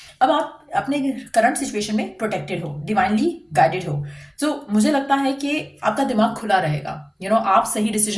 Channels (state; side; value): identical; both; correlation 1.00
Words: अब आप अपने करंट सिचुएशन में प्रोटेक्टेड हो, डिवाइनली गाइडेड हो. तो मुझे लगता है कि आपका दिमाग खुला रहेगा. आप सही